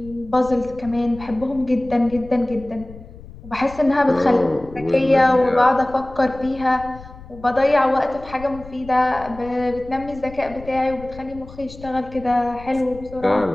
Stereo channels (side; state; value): left; noise; rumble, 17 dB below the sound